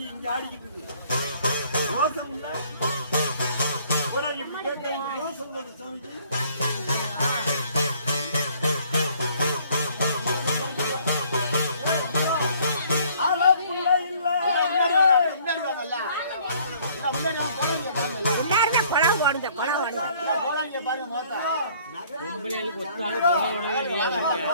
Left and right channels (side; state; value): both; inverted; correlation -0.59